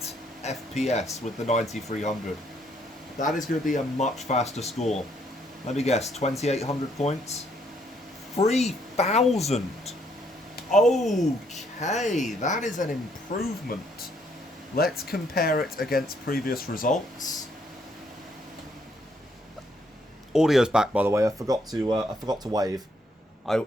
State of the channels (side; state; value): both; normal; correlation 0.70